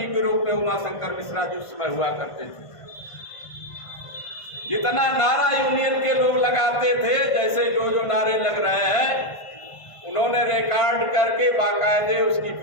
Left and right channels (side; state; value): right; late; 1.5 ms